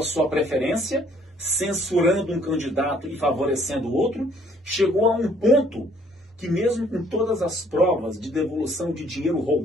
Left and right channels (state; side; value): normal; both; correlation 0.62